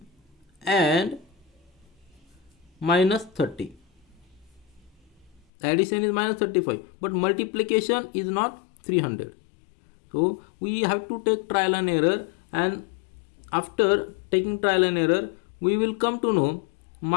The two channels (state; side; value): drops out; right; at 5.4 s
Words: and minus 30. Addition is minus 35 but multiplication is not 300. So we have to take trial and error, and after taking trial and error we will come to know